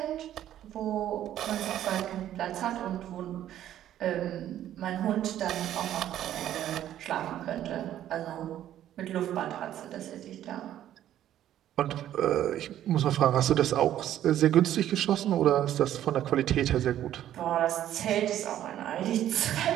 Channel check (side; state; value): left; quieter; 11.8 dB